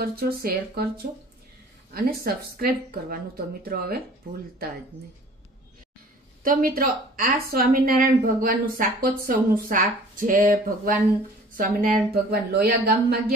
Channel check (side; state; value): both; normal; correlation 0.49